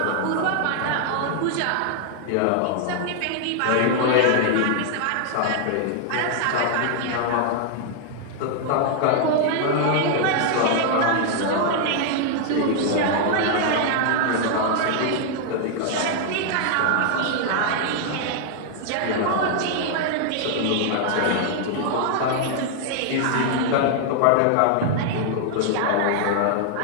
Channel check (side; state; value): both; different; correlation 0.00